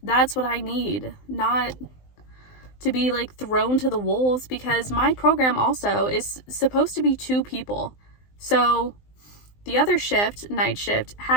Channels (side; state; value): right; late; 19 ms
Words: That's what I need, not to be like thrown to the wolves, because my program also is supposed to be 2 people. So the other shift, night shift,